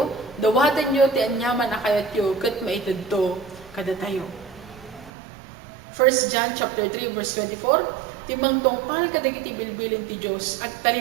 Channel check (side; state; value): left; drops out; at 5.1 s